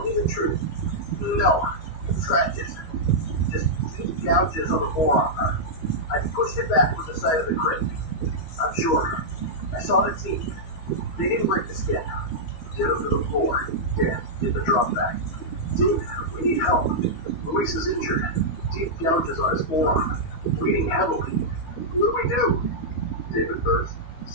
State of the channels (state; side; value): late; right; 13 ms